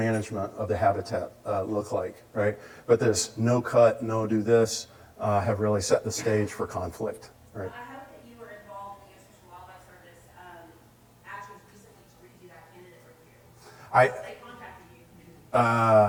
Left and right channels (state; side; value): identical; both; correlation 1.00